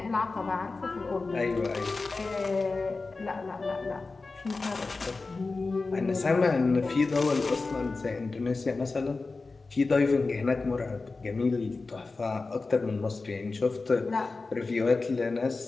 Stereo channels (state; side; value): quieter; right; 3.8 dB